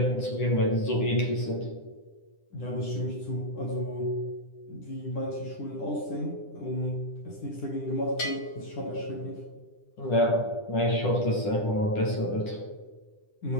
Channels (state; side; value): late; right; 10 ms